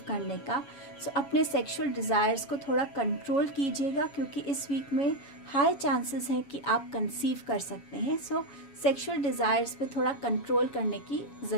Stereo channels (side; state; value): right; late; 7.3 ms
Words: करने का, सो अपने सेक्सुअल डिज़ायर्स को थोड़ा कंट्रोल कीजिएगा, क्योंकि इस वीक में हाई चांसेस हैं कि आप कंसीव कर सकते हैं। सो सेक्सुअल डिज़ायर्स पे थोड़ा कंट्रोल करने की